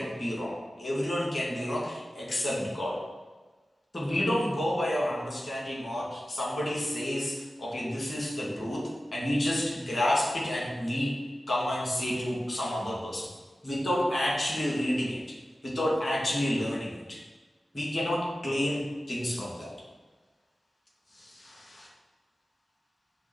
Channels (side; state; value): both; normal; correlation 0.94